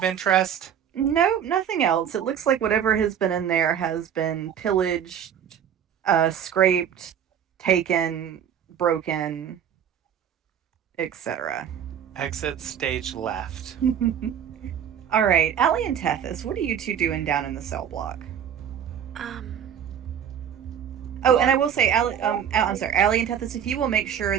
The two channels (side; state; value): left; quieter; 8.9 dB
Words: interest? No, nothing else. It looks like whatever has been in there has been pillaged, scraped, taken, broken, etc. Exit stage left. All right, Allie and Tethys, what are you two doing down in the cell block? Oh, and I will say, Allie and Tethys, if you will make sure